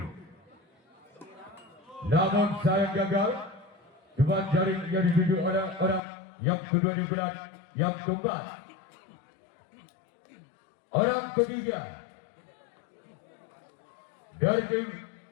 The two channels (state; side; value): drops out; right; at 6.0 s